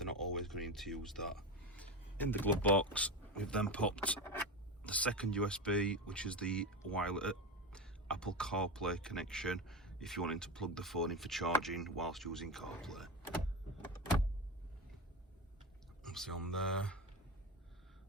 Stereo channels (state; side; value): normal; both; correlation 0.20